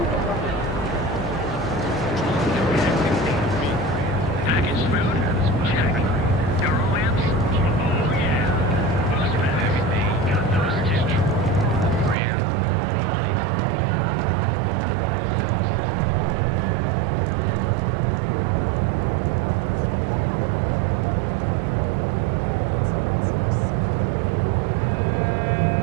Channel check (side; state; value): left; drops out; at 12.2 s